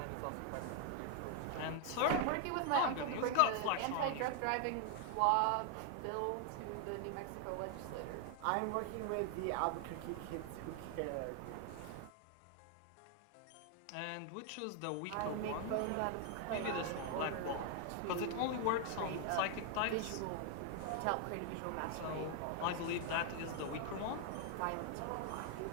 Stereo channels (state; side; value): different; both; correlation 0.00